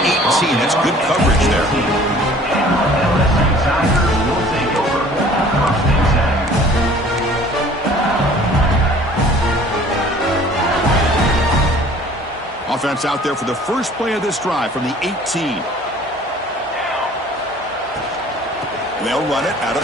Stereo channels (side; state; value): both; normal; correlation 0.51